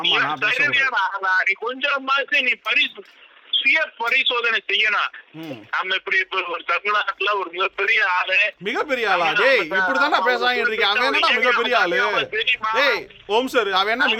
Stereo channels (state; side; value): identical; both; correlation 1.00